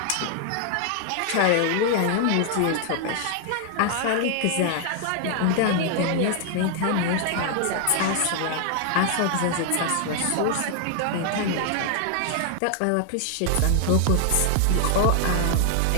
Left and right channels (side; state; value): both; different; correlation 0.00